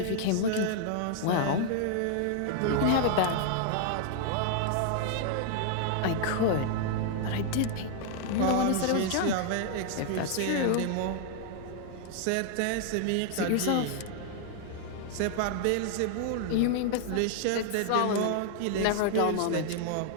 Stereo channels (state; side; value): different; both; correlation 0.00